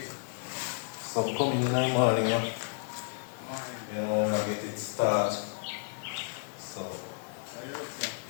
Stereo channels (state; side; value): silent; right; digital silence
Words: So I'm coming in the morning, yeah. You know, when I get it start. So,